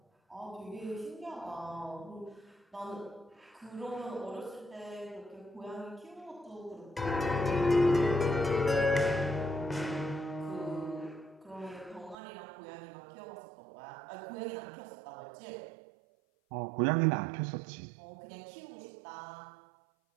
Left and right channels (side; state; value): left; drops out; at 12.2 s